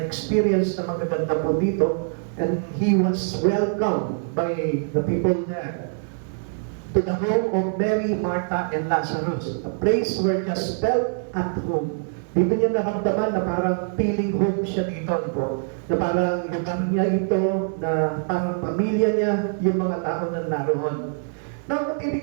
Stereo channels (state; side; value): silent; left; digital silence